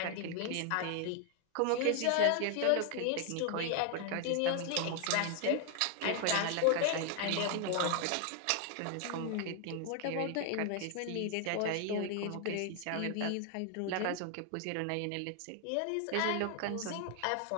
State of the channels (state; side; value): different; both; correlation 0.00